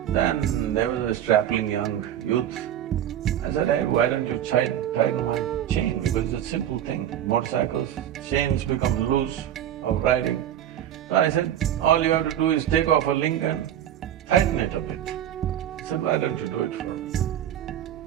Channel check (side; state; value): left; quieter; 10.9 dB